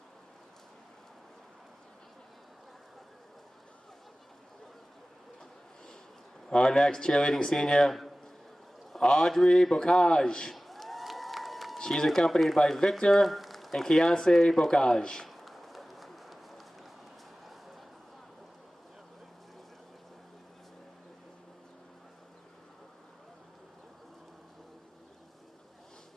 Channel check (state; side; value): normal; both; correlation 0.97